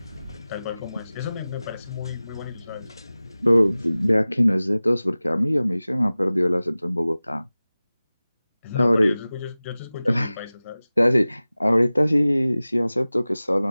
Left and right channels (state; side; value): inverted; both; correlation -0.97